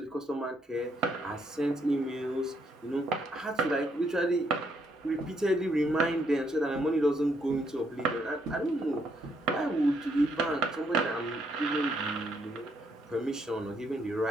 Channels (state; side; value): normal; both; correlation 0.73